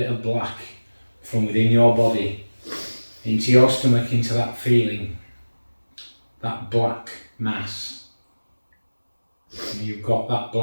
of black from within your body into your stomach, into that feeling, that black mass. And you've got that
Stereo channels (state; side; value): inverted; both; correlation -1.00